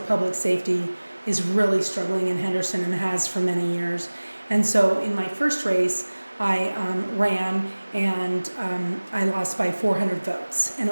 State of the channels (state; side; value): inverted; both; correlation -1.00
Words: safety is really struggling in Henderson and has for many years. And so in my first race, I ran and I lost by 400 votes, and